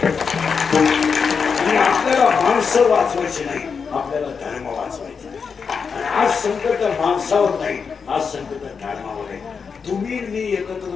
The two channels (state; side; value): quieter; right; 5.8 dB